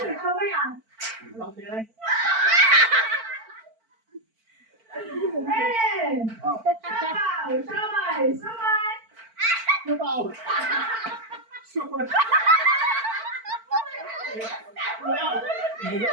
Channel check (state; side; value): late; left; 4.5 ms